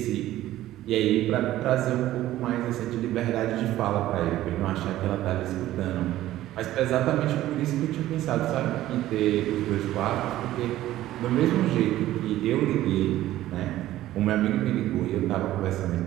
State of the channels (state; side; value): quieter; left; 14.5 dB